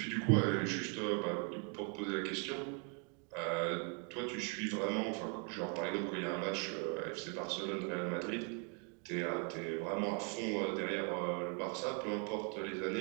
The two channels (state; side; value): quieter; left; 38.2 dB